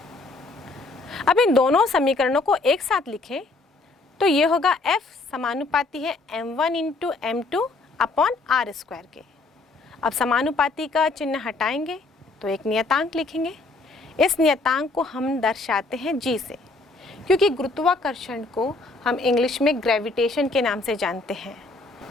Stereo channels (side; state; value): right; quieter; 3.4 dB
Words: अब इन दोनों समीकरणों को एक साथ लिखें तो ये होगा F समानुपाती है m1 into m2 upon r square के। अब समानुपाती का चिन्ह हटाएंगे तो एक नियतांक लिखेंगे। इस नियतांक को हम दर्शाते हैं g से, क्योंकि गुरुत्वाकर्षण को हम इंग्लिश में ग्रेविटेशन के नाम से जानते हैं।